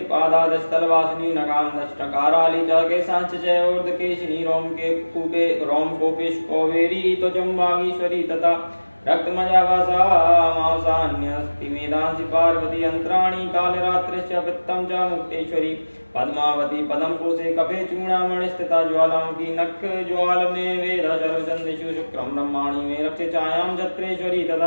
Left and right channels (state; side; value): inverted; both; correlation -1.00